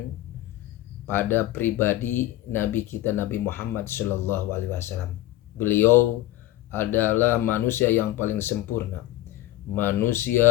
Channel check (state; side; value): quieter; right; 15.3 dB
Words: pada pribadi Nabi kita, Nabi Muhammad sallallahu alaihi wasallam. Beliau adalah manusia yang paling sempurna,